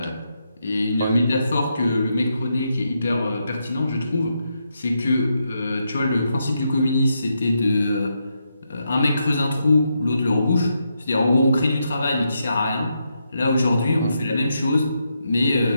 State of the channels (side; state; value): both; inverted; correlation -0.82